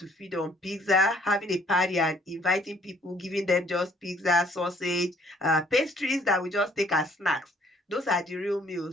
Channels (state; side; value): normal; both; correlation 0.61